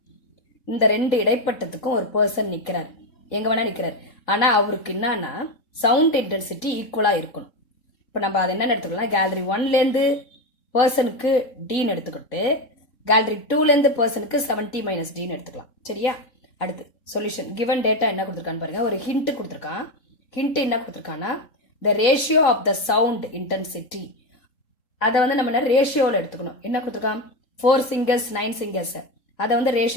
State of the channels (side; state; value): right; late; 3.7 ms